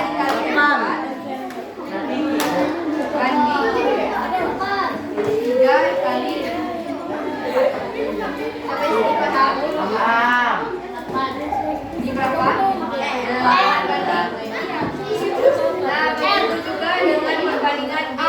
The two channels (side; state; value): both; identical; correlation 1.00